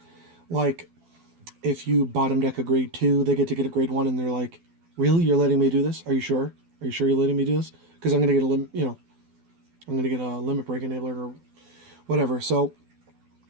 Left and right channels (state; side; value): late; left; 12 ms